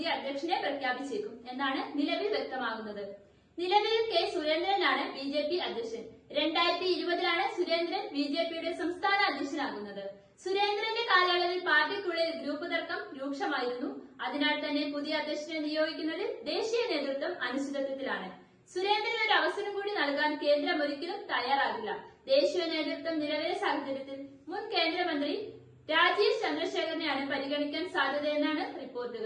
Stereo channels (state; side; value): identical; both; correlation 1.00